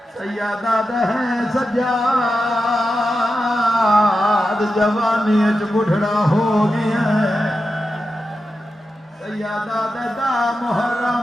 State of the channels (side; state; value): both; normal; correlation 0.90